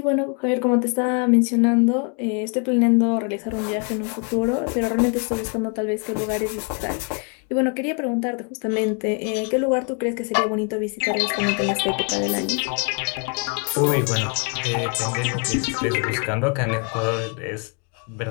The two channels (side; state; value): right; quieter; 36.7 dB